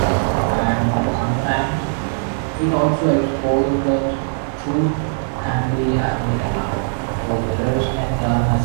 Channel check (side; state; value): left; silent; digital silence